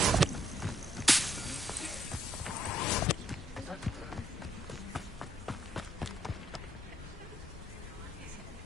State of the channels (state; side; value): normal; both; correlation 0.72